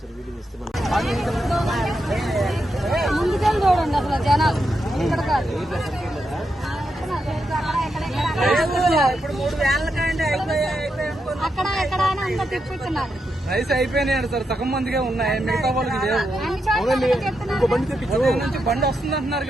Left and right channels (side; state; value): both; normal; correlation 0.84